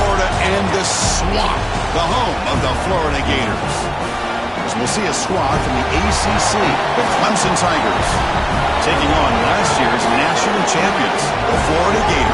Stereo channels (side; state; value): both; identical; correlation 1.00